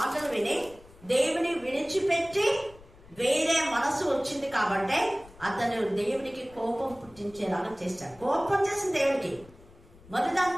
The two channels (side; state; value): left; noise; rumble, 23 dB below the sound